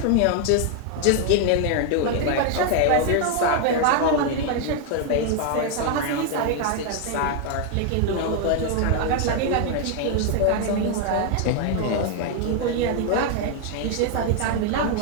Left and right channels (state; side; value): different; both; correlation 0.00